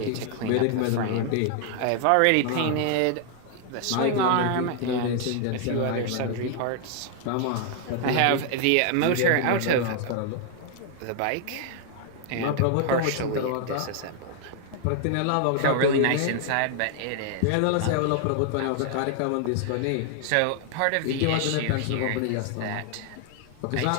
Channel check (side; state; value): both; different; correlation 0.00